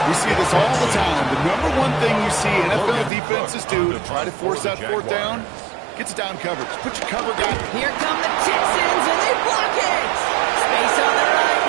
We see this all the time. The number one thing you see NFL defenses do to try to force that 4th down, gets down coverage. Put your cover guy. Here come the Texans, and they block it. Space on the right.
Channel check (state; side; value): drops out; left; at 3.1 s